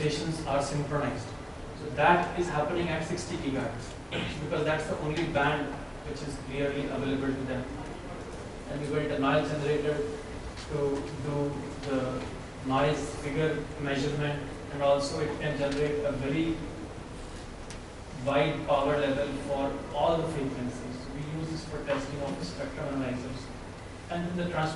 are synchronized. So that is happening at 60 gigahertz because that's the only band which is clearly available to them. And we built a noise generator to do the noise figure measurement, and also it can generate a very wide power level for all the frequencies. We use this for testing of the spectrum analyzers. And then the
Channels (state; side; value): identical; both; correlation 1.00